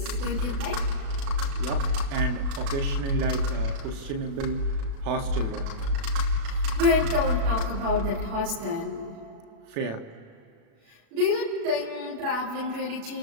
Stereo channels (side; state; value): left; late; 36 ms